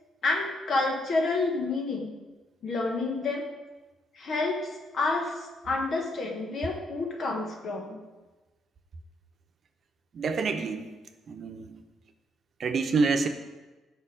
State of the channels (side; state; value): both; normal; correlation 0.72